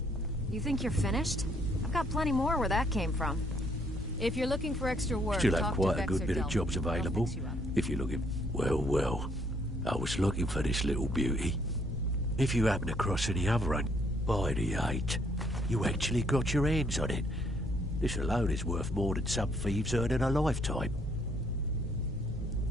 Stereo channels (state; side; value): normal; both; correlation 0.68